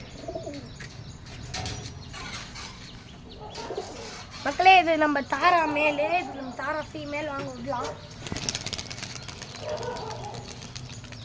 மக்களே, இது நம்ம தாரா மேலே, இது நம்ம தாரா ஃபீமேல். வாங்க விடலாம்.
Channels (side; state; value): both; identical; correlation 1.00